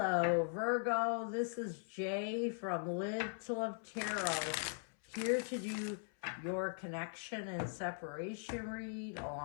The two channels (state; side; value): silent; right; 51 dB below the other